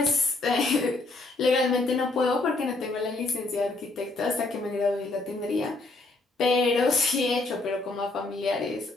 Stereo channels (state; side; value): quieter; right; 3.1 dB